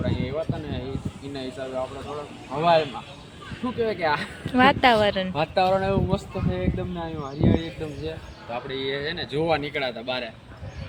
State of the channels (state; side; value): identical; both; correlation 1.00